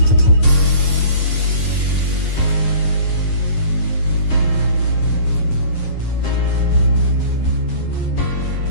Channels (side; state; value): right; late; 8.9 ms